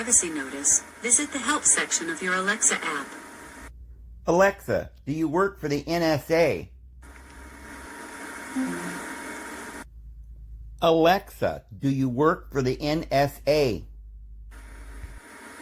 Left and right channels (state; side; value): identical; both; correlation 1.00